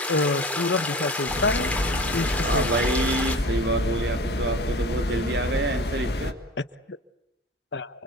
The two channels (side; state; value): both; normal; correlation 0.38